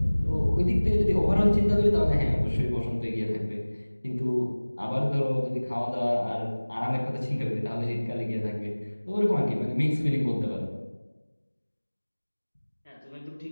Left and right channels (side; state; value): both; inverted; correlation -1.00